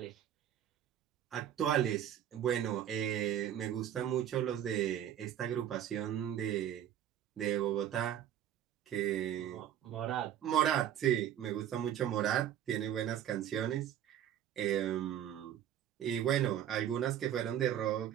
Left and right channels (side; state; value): left; quieter; 10.7 dB